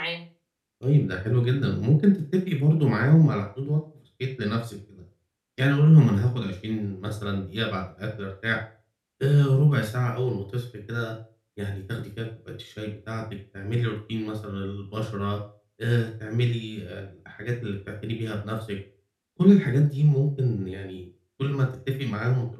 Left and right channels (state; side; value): identical; both; correlation 1.00